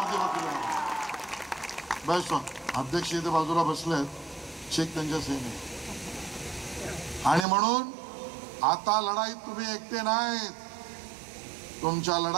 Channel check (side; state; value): left; drops out; at 7.5 s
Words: दी वकील, बेस्ट ऑफ. अध्यक्ष इथे बाजूला बसलेत, चेक त्यांच्या सहीने. आणि म्हणून आता लढाईत तुम्ही एकटे नाहीत. तुमच्या